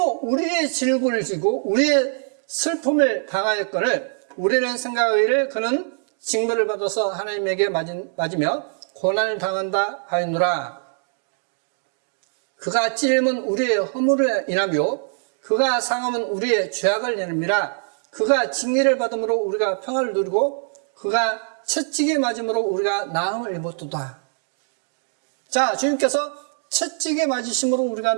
우리의 질고를 지고 우리의 슬픔을 당하였거늘 우리는 생각하기를 그는 징벌을 받아서 하나님에게 맞으며 고난을 당한다 하였노라. 그가 찔림은 우리의 허물을 인하며 그가 상함은 우리의 죄악을 인함이라. 그가 징계를 받음으로 우리가 평화를 누리고 그가 채찍에 맞음으로 우리가 나음을 입었도다. 자, 주님께서 채찍에 맞으심으로 우리가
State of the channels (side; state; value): left; silent; 58 dB below the other